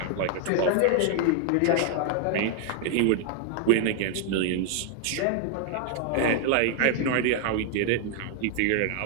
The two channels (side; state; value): both; different; correlation 0.00